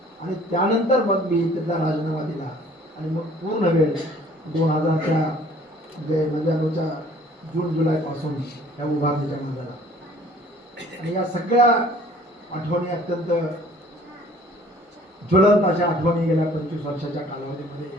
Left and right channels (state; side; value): normal; both; correlation 0.54